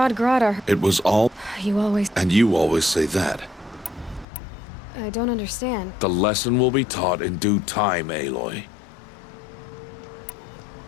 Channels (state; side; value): drops out; right; at 4.2 s